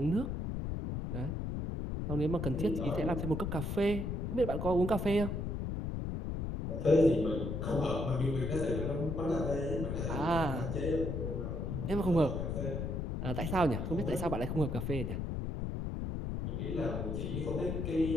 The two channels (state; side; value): noise; left; rumble, 2 dB below the sound